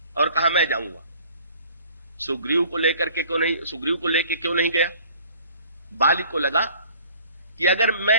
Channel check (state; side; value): inverted; both; correlation -0.52